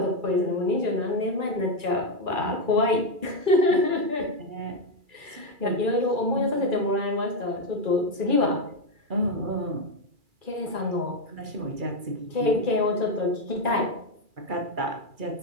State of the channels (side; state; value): left; late; 2.3 ms